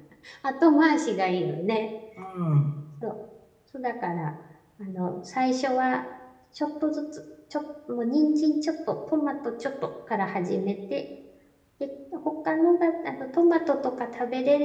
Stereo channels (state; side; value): identical; both; correlation 1.00